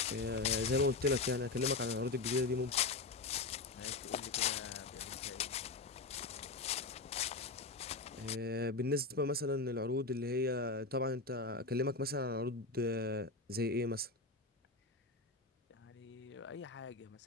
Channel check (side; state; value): right; quieter; 3.7 dB